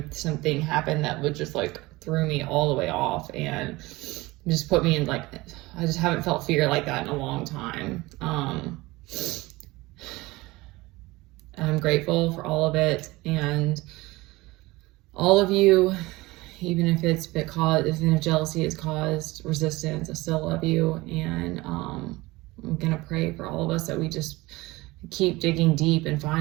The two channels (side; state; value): left; quieter; 20.9 dB